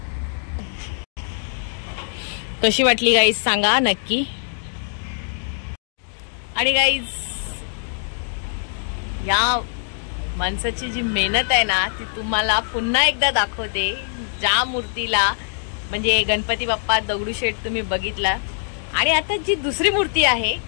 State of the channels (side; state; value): right; silent; digital silence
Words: कशी वाटली गाईज सांगा नक्की. आणि गाईज या माणसाची जी मेहनत आहे ना ती तुम्हाला पुन्हा एकदा दाखवते. ज्या मूर्तीला म्हणजे गणपती बाप्पा दगडूशेठ तुम्ही बघितला, आणि आता जी दुसरी मूर्ती आहे